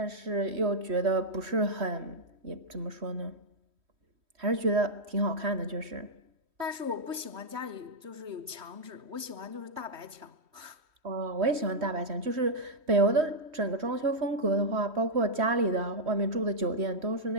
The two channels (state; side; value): late; left; 3.1 ms